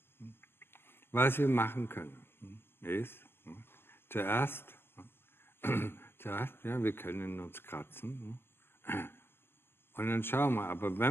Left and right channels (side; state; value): right; late; 0.11 ms